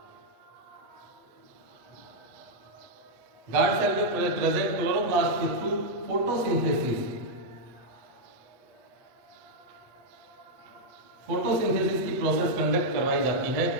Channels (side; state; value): left; late; 8.0 ms